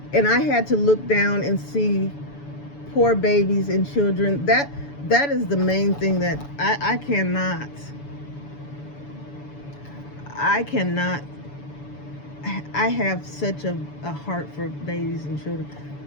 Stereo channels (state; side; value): late; right; 7.0 ms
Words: and I had to look down and see poor babies and children, that is the main thing that I cannot, I have such a heart for babies and children.